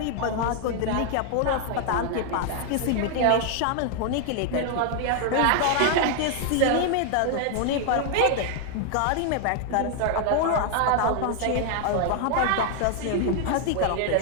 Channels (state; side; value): different; both; correlation 0.00